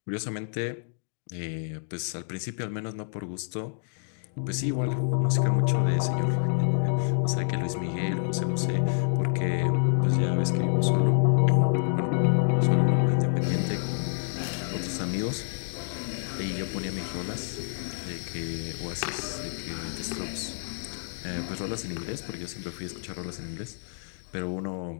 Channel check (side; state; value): right; silent; digital silence